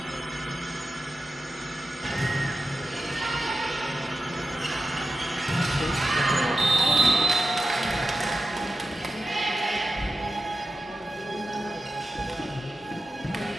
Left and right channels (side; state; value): both; normal; correlation 0.92